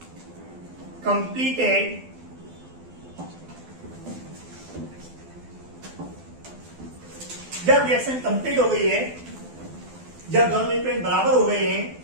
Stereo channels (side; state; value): left; late; 12 ms